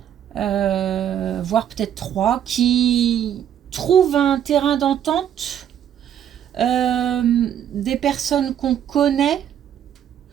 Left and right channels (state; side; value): quieter; left; 9.8 dB